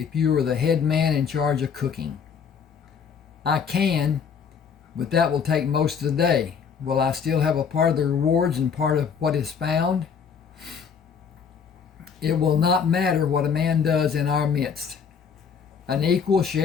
you are the head man in charge of cooking. I can, but that will take most of the day. Will I still have a part of the rewards and part of what is found? It will not matter what a man does in our midst. An equal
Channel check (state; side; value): quieter; right; 6.6 dB